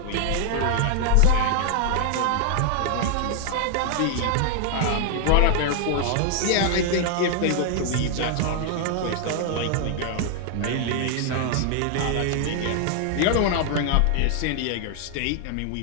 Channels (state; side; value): different; both; correlation 0.00